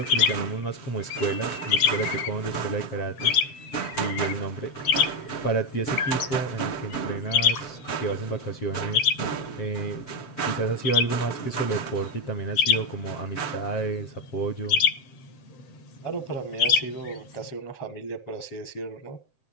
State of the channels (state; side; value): late; right; 7.7 ms